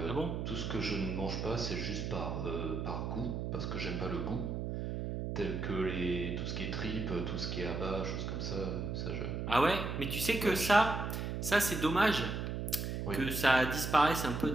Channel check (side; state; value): right; noise; hum, 3 dB below the sound